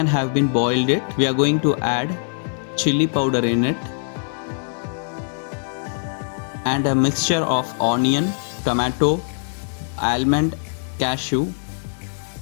have been boiled we are going to add chili powder in it and a mixture of onion, tomato, almond, cashew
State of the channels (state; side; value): silent; right; digital silence